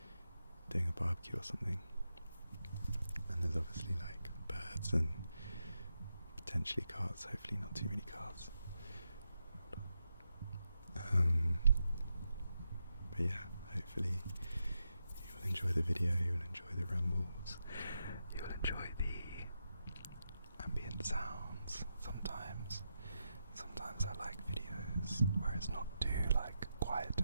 doing a barbecue or something, and there's obviously like birds and potentially cars, hopefully not too many cars. But yeah, hopefully you will enjoy the video, you will enjoy the rambles, you will enjoy the ambient sounds. Sometimes I like videos where it's not too like quiet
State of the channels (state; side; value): inverted; both; correlation -0.86